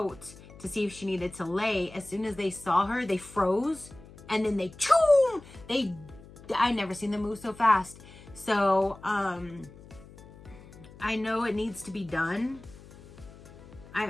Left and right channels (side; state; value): left; noise; hum, 20 dB below the sound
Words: to see if she needed to lay, as soon as they saw her, they froze, and then they choom! I never seen them move so fast. So, I know it needs to be done.